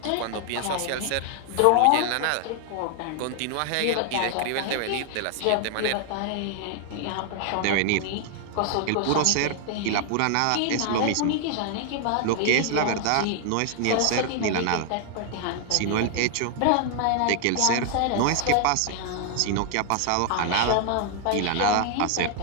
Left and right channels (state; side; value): different; both; correlation 0.00